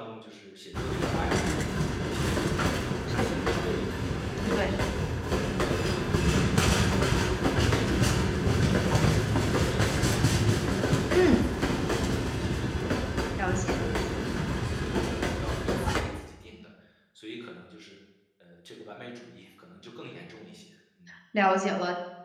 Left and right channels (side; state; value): both; identical; correlation 1.00